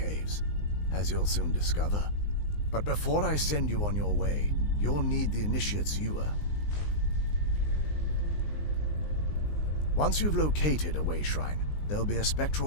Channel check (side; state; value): right; late; 19 ms